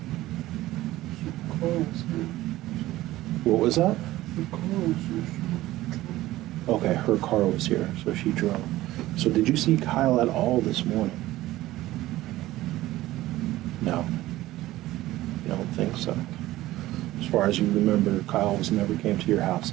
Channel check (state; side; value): quieter; left; 16.3 dB